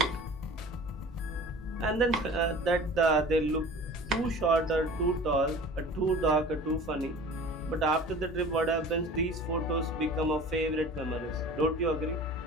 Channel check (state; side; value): normal; both; correlation 0.42